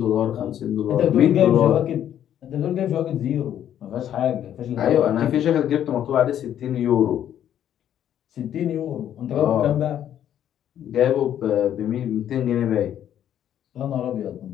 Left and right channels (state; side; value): quieter; right; 10.5 dB